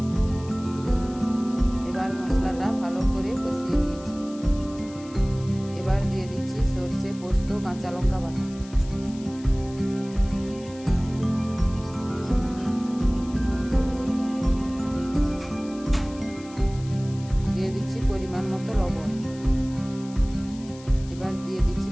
এবার মশলাটা ভালো করে কষিয়ে নিয়েছি। এবার দিয়ে দিচ্ছি সর্ষে পোস্ত কাঁচা লঙ্কা বাটা, দিয়ে দিচ্ছি পরিমাণ মতো লবণ। এবার দিয়ে দিচ্ছি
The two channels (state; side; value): noise; left; hiss, 21 dB below the sound